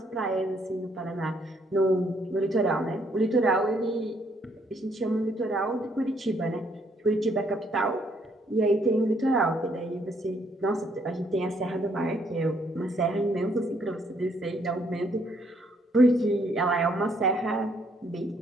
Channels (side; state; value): both; normal; correlation 0.69